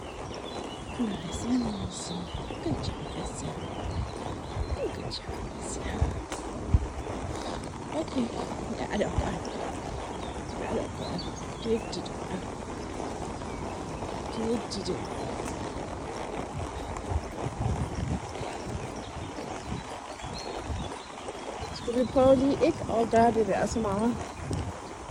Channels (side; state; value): both; identical; correlation 1.00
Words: Nice and easy. Good job, Bessie. Good job, Bessie. Okay. Got it. Got it. Did it. Skal vi prøve lige ikke at gøre det der så meget